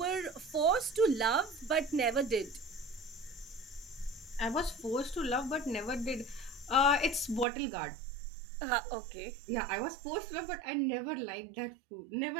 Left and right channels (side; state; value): left; drops out; at 7.5 s